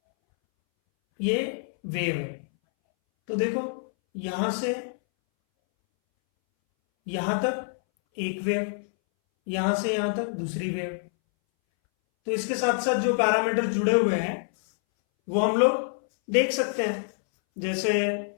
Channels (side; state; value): right; silent; 61 dB below the other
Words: ये वेव है, तो देखो यहां से यहां तक एक वेव, यहां से यहां तक दूसरी वेव। तो इसके साथ साथ जो पैरामीटर जुड़े हुए हैं वो हम लोग देख सकते हैं। जैसे